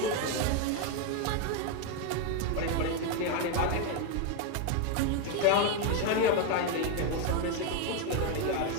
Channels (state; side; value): different; both; correlation 0.02